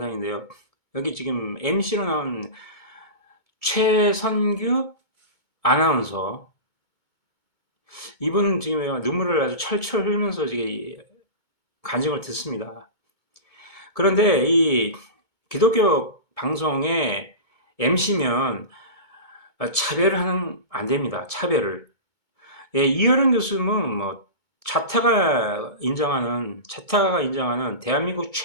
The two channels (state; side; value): late; left; 2.2 ms